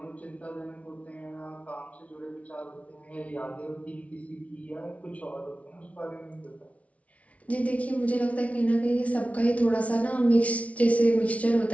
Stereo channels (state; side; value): late; right; 0.065 ms